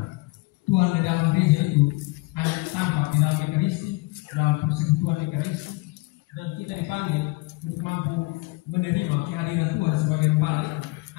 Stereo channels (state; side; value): quieter; right; 23.8 dB